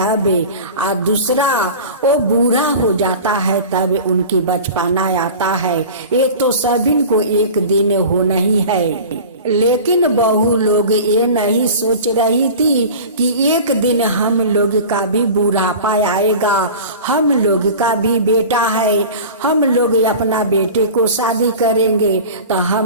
और दूसरा वो बूढ़ा हो जाता है तब उनकी बचपना आता है। ये तो सभी को एक दिन होना ही है। लेकिन बहू लोग ये नहीं सोच रही थी कि एक दिन हम लोग का भी बुढ़ापा आएगा, हम लोग का भी बेटा है, हम लोग अपना बेटे को शादी करेंगे तो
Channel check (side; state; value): both; inverted; correlation -0.36